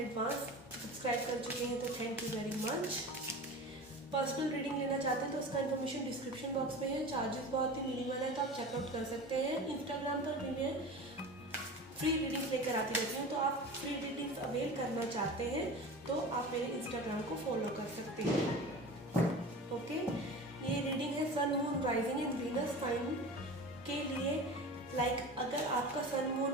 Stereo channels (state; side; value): normal; both; correlation 0.33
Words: Subscribe कर चुके हैं तो thank you very much. Personal reading लेना चाहते हैं तो उसका इन्फॉर्मेशन डिस्क्रिप्शन बॉक्स में है। चार्जेस बहुत ही मिनिमल है तो आप चेकआउट कर सकते हैं। इंस्टाग्राम पर भी मैं फ्री रीडिंग्स लेकर आती रहती हूँ, तो आप फ्री रीडिंग्स अवेल करना चाहते हैं तो आप मेरे इंस्टाग्राम को फॉलो कर सकते हैं। ओके, ये रीडिंग है sun moon rising and Venus sign के लिए। लाइक अगर आपका सन